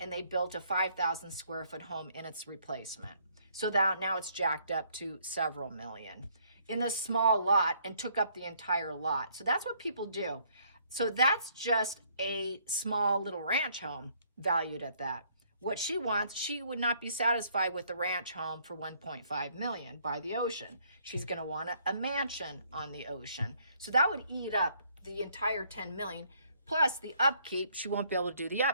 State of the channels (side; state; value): both; inverted; correlation -0.66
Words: they built a 5,000 square foot home in its replacement. So that now it's jacked up to several million in a small lot and took up the entire lot. So that's what people do. So that's just a small little ranch home valued at that. What she wants, she would not be satisfied with the ranch home for 1.5 million by the ocean. She's going to want a mansion on the ocean. So that would eat up the entire 10 million. Plus the upkeep, she won't be able to do the